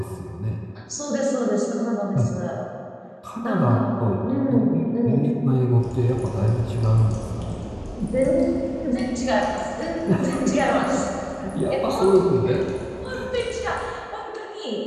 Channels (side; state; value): both; identical; correlation 1.00